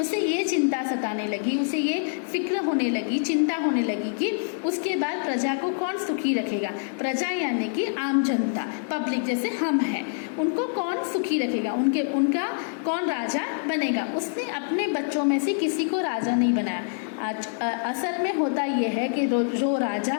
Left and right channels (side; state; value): right; silent; digital silence